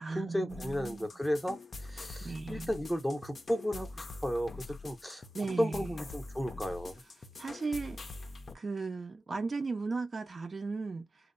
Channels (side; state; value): both; normal; correlation 0.95